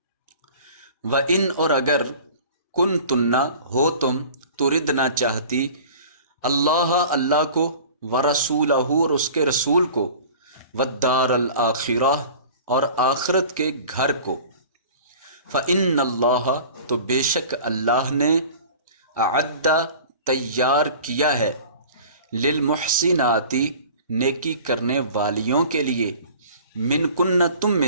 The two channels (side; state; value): both; inverted; correlation -0.43